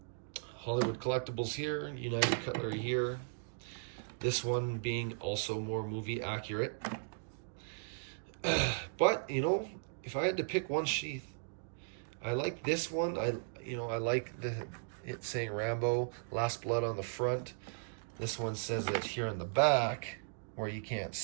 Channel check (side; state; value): left; silent; digital silence